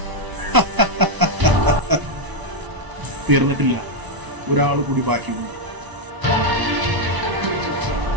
തീർന്നിട്ടില്ല, ഒരാൾ കൂടി ബാക്കിയുണ്ട്.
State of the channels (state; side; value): late; left; 1.0 ms